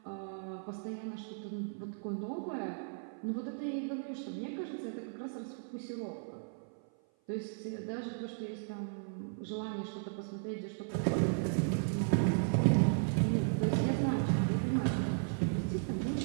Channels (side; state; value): left; silent; 54 dB below the other